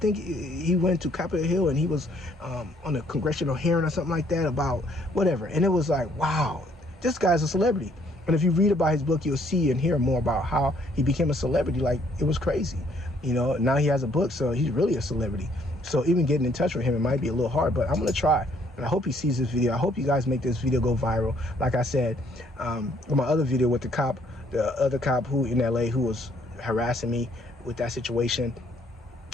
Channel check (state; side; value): normal; both; correlation 0.65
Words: he went to Capitol Hill and he was on a congressional hearing or something like that about whatever. And it was like, wow, this guy's a celebrity. And if you read about his book, you'll see and hear more about how he became a celebrity. Like, it was crazy. Now he has a book, so he's really a celebrity. So even getting in touch with him, it might be a little hard, but I'm going to try. And I hope he sees this video. I hope you guys make this video go viral. Like I said, my other video with the other cop who in LA who was harassing me with that situation.